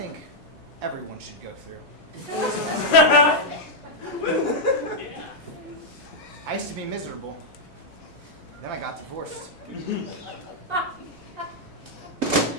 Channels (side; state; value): both; normal; correlation -0.03